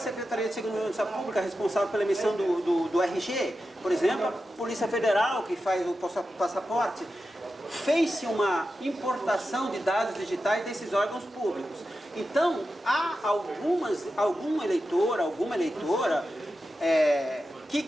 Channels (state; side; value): normal; both; correlation 0.91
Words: de Segurança Pública responsável pela emissão do RG, por exemplo, a Polícia Federal que faz o passaporte, fez-se uma importação de dados digitais desses órgãos públicos. Então, há algum eleitor, alguma eleitora